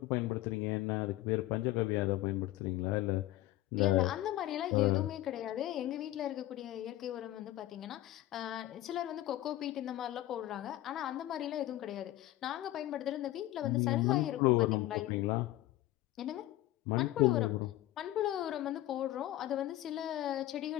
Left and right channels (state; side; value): quieter; right; 15.2 dB